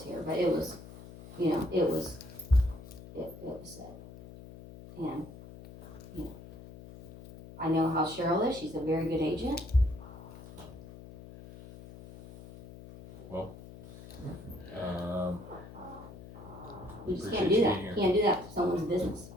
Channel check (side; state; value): left; noise; hum, 16 dB below the sound